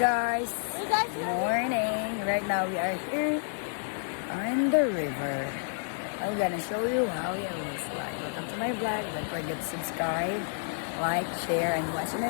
guys, morning. Right now we are here on the river. I'm gonna show you how it looks like. Welcome to my vlog. Don't forget to subscribe, like, share, and watch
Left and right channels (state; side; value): silent; right; digital silence